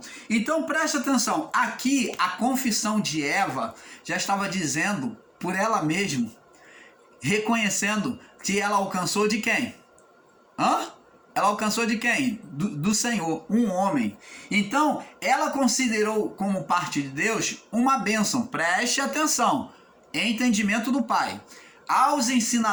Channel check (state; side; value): identical; both; correlation 1.00